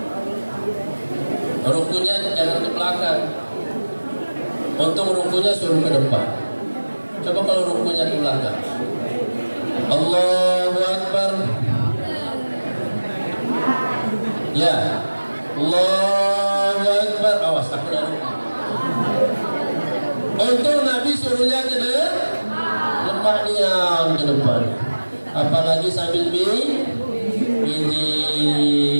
rukunya jangan ke belakang. Untung rukunya suruh ke depan. Coba kalau rukunya ke belakang. Allahu Akbar. Ya. Allahu Akbar. Awas, takut ada ruku. Untung Nabi suruhnya ke depan, ke depan. Apalagi sambil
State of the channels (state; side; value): inverted; both; correlation -1.00